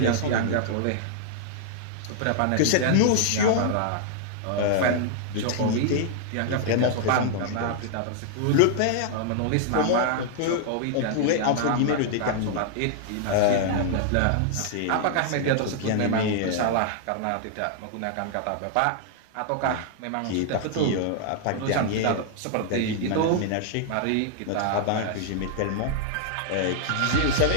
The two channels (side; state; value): both; different; correlation -0.01